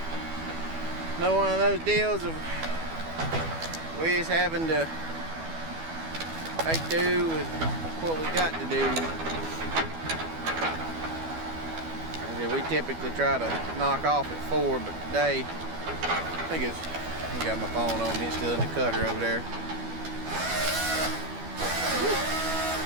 another one of those deals of we just having to make do with what we got to do. We typically try to knock off at 4, but today I got my phone on me. It's still in the cutter over there.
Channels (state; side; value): late; left; 12 ms